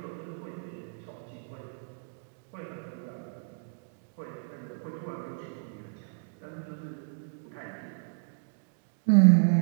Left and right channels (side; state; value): left; silent; digital silence